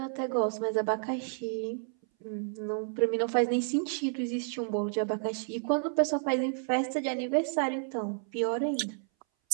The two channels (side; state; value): left; silent; 57 dB below the other